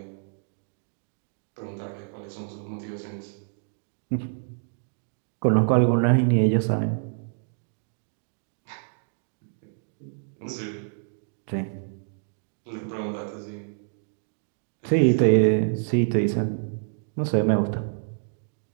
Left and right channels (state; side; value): silent; left; digital silence